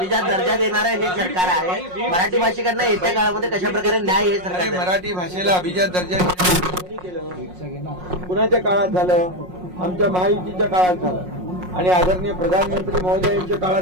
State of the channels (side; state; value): left; late; 5.5 ms